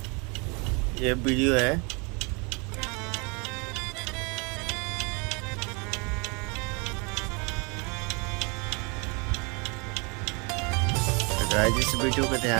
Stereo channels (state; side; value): quieter; left; 31.6 dB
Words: ये वीडियो है। तो गाइज इस वीडियो को